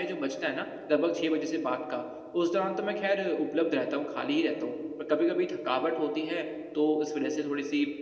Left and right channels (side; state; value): both; identical; correlation 1.00